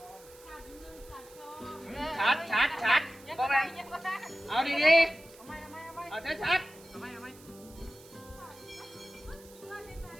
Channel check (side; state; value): right; noise; hiss, 22 dB below the sound